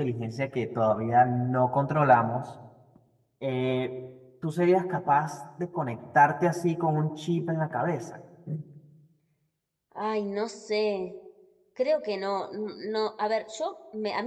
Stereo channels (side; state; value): both; identical; correlation 1.00